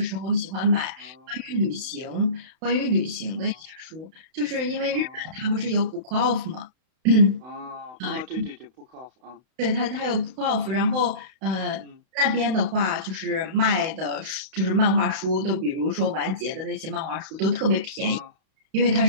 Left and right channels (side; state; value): left; late; 31 ms